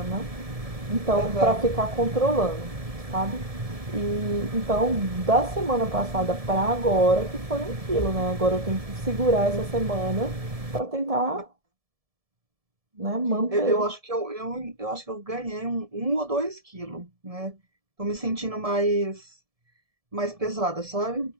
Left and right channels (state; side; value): late; left; 1.7 ms